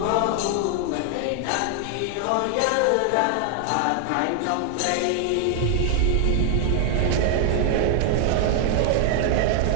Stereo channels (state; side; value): different; both; correlation 0.00